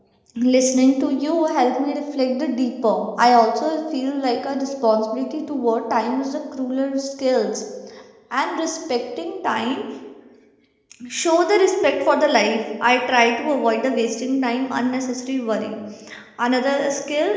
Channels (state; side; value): identical; both; correlation 1.00